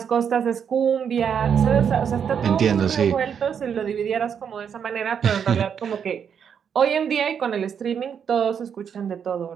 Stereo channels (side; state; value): left; quieter; 7.6 dB